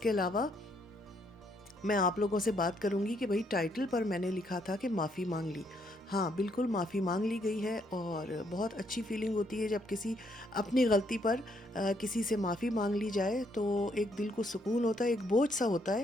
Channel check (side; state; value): both; normal; correlation 0.72